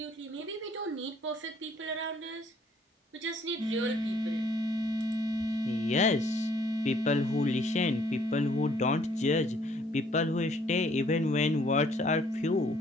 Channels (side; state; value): both; normal; correlation 0.62